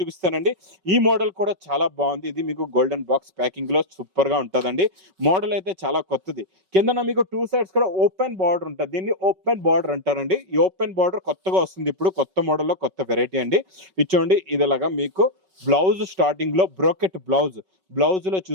ఈ మోడల్ కూడా చాలా బాగుంది. ఇది మీకు గోల్డెన్ బాక్స్ ప్యాకింగ్ లో సూపర్ గా ఉంటుందండి. మోడల్ అయితే చాలా కొత్తది. కింద మీకు 2 సైడ్స్ కూడా ఓపెన్ బార్డర్ ఉంటుంది. దీన్ని ఓపెన్ బార్డర్ అంటారండి. ఈ ఓపెన్ బార్డర్ కొత్తగా వస్తుంది ఇప్పుడు, కొత్త మోడల్లో కొత్త వెరైటీ అండి. ఇచ్చోండి ఇదిలాగా మీకు బ్లౌజ్ స్టార్టింగ్ లో బ్రోకెట్ బ్లౌజ్ లో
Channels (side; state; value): left; late; 5.3 ms